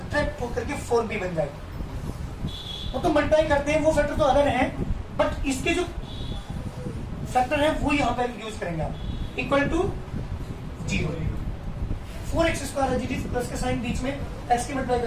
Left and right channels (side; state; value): both; identical; correlation 1.00